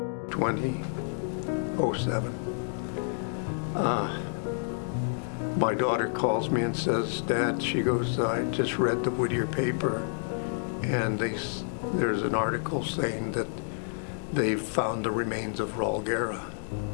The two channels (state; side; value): silent; right; digital silence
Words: 2007. My daughter calls me and says, "Dad," she goes, "I just read the Whittier paper, and there's an article saying that they've found the remains of Raul Guerra."